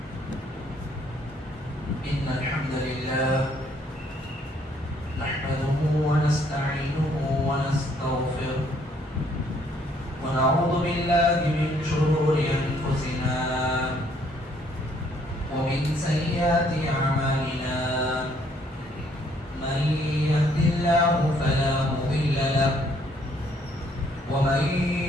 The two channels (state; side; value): normal; both; correlation 0.66